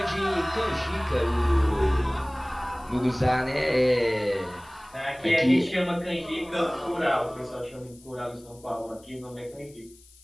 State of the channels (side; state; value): left; noise; hiss, 26 dB below the sound